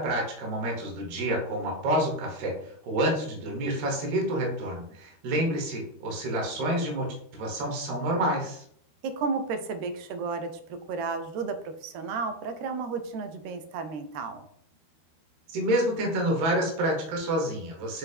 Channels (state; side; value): late; left; 13 ms